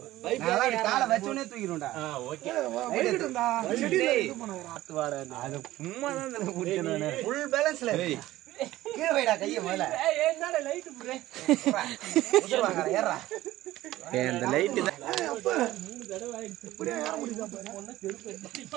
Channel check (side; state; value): left; quieter; 15.9 dB